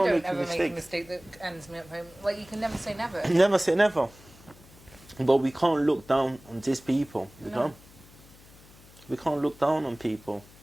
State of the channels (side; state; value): left; noise; hum, 24 dB below the sound